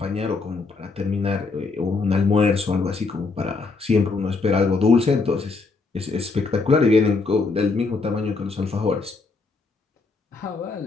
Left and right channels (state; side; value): quieter; right; 4.1 dB